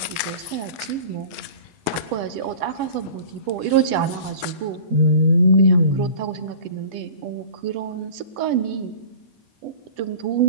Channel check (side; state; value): left; late; 8.1 ms